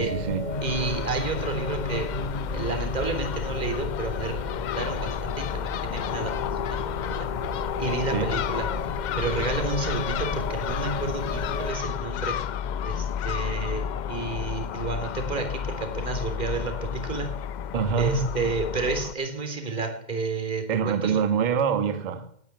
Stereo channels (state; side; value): late; right; 2.1 ms